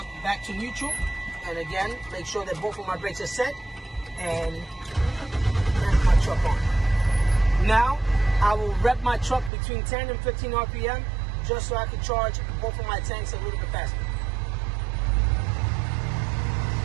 back to neutral, and again, make sure that both of my brakes are set, and turn my truck on. Now I will rev my truck between 10 and 15 RPM, just so I can charge both of my tanks a little bit faster.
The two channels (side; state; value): left; drops out; at 9.5 s